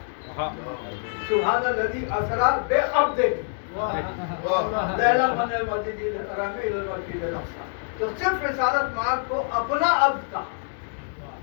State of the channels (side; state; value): right; silent; digital silence